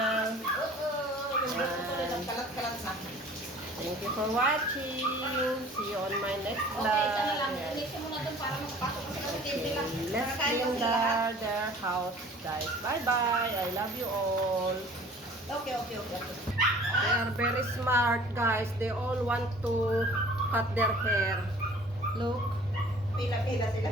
Thank you for watching. See you on my next vlog. Let's clean their house, guys. Bye-bye. I love you all. Okay. They are very smart, guys. They all want to cut their hair. Look. Pila-pila sila.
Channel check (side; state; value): both; normal; correlation 0.48